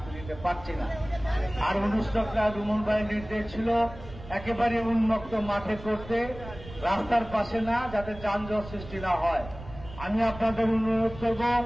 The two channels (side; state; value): right; noise; rumble, 15 dB below the sound